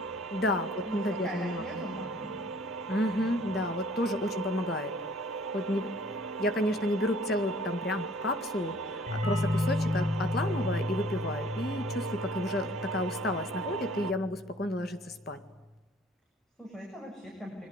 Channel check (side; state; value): both; normal; correlation 0.55